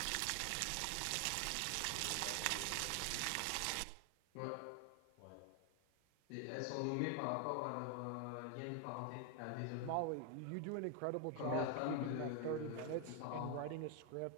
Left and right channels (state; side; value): different; both; correlation 0.01